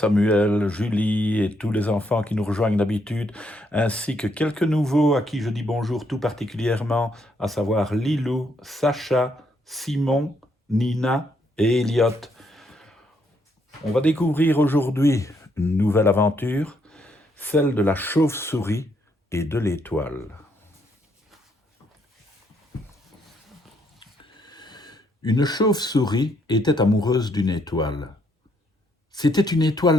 Julie et tous les enfants qui nous rejoignent d'habitude, ainsi que quelques nouveaux à qui je dis bonjour tout particulièrement, à savoir Lilou, Sacha, Simon, Nina et Elliot. On va découvrir aujourd'hui une nouvelle aventure, celle de la chauve-souris et de l'étoile. Une chauve-souris était amoureuse d'une étoile. C'était une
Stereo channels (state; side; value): normal; both; correlation 0.73